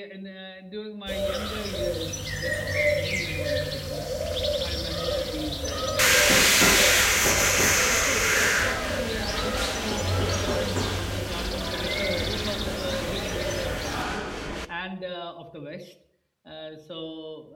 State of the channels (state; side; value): identical; both; correlation 1.00